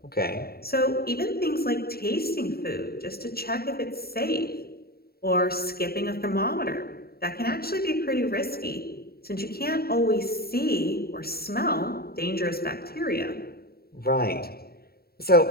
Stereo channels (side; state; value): right; late; 0.45 ms